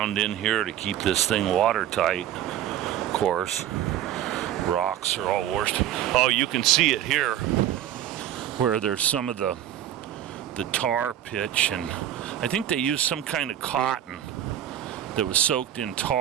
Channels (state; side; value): quieter; left; 11.5 dB